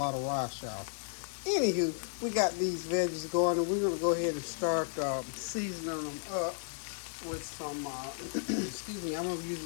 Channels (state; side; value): silent; right; digital silence